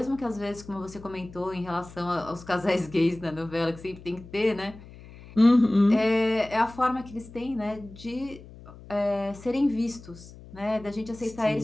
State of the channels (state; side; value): noise; left; hum, 18 dB below the sound